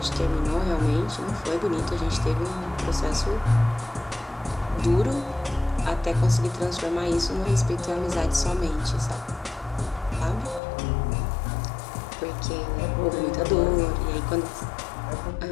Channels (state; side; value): drops out; right; at 10.6 s